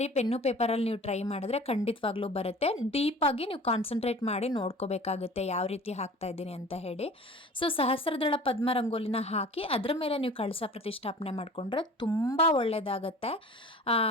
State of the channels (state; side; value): normal; both; correlation 0.43